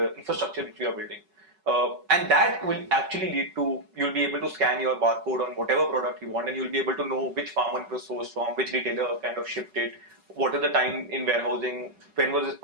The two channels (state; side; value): late; left; 5.3 ms